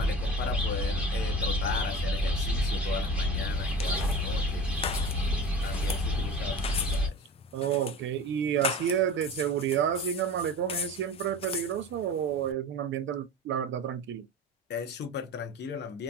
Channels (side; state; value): both; normal; correlation 0.34